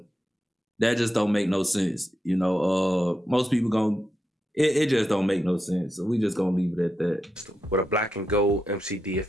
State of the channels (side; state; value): both; normal; correlation 0.86